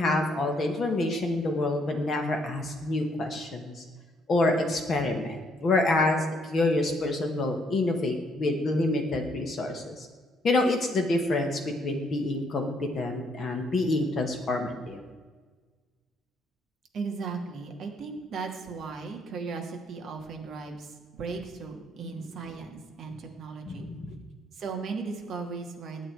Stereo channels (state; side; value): normal; both; correlation 0.70